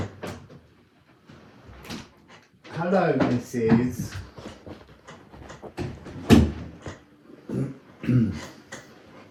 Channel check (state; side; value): identical; both; correlation 1.00